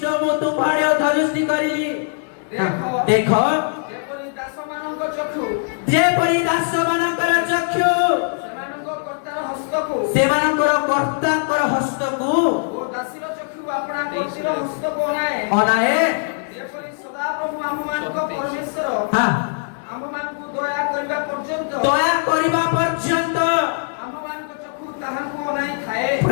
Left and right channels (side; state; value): right; silent; 65 dB below the other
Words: ମୁଁ ତୁମ୍ଭଆଡ଼େ ଅଧୋଦୃଷ୍ଟି କରିଲି। ଦେଖ ଯେପରି ଦାସମାନଙ୍କ ଚକ୍ଷୁ ଯେପରି ଦାସମାନଙ୍କର ଚକ୍ଷୁ ସେମାନଙ୍କର କର୍ତ୍ତାର ହସ୍ତକୁ ଓ ଦାସୀର ଚକ୍ଷୁ ଆପଣା କର୍ତ୍ତୀର ହସ୍ତକୁ ଅନାଏ ଯେପରି ସଦାପ୍ରଭୁ ଆମମାନଙ୍କ ପରମେଶ୍ୱର ଆମମାନଙ୍କୁ ଦୟା କରିବା ପର୍ଯ୍ୟନ୍ତ ଆମମାନଙ୍କ ଚକ୍ଷୁ ତାହାଙ୍କୁ ଅନାଇ ଥାଏ।